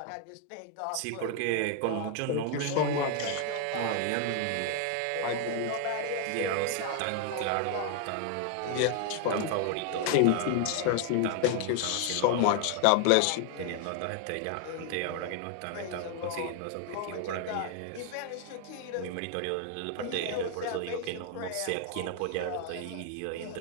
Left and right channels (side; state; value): both; different; correlation 0.00